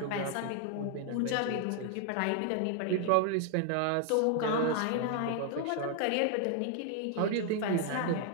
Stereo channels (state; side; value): different; both; correlation 0.00